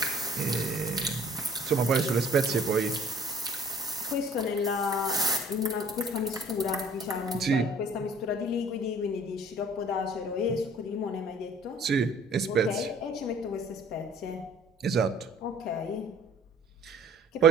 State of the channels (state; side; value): normal; both; correlation 0.53